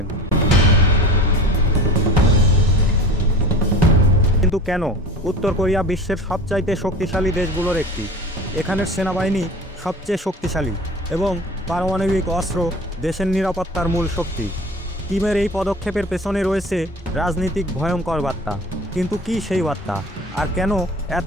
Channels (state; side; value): normal; both; correlation 0.38